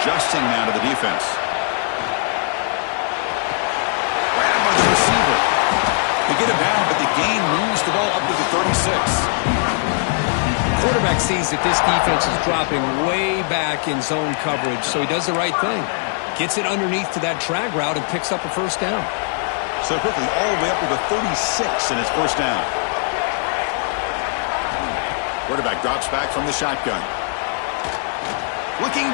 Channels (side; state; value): right; silent; 58 dB below the other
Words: adjusting now to the defense. Grabbed by the receiver. They get him down, but the gain moves the ball up to the 36. Quarterback sees that this defense is dropping way back in zone coverage, so he does the right thing. Gets it underneath to that drag route and picks up a first down. So quickly, all the way up to the 36 in his first down. Quarterback drops back from the shotgun. Looking